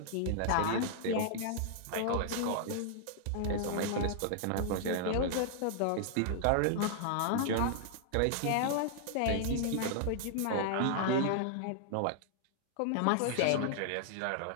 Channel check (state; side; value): different; both; correlation -0.01